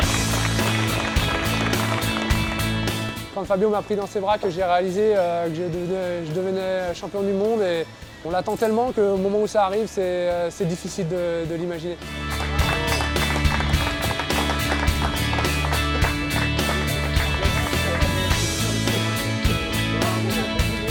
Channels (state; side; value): identical; both; correlation 1.00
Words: Quand Fabio m'a pris dans ses bras, que j'ai réalisé que je devenais champion du monde, et on l'attend tellement qu'au moment où ça arrive, c'est difficile de l'imaginer.